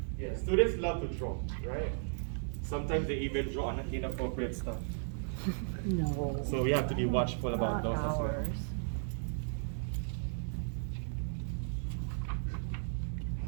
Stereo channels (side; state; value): left; silent; digital silence